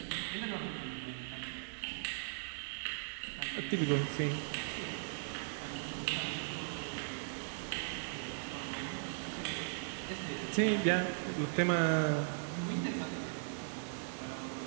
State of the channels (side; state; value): left; silent; digital silence